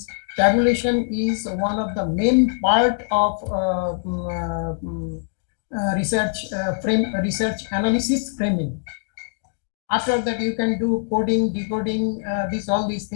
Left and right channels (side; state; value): right; silent; digital silence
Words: tabulation is one of the main part of research research analysis framing. After that, you can do coding, decoding, all these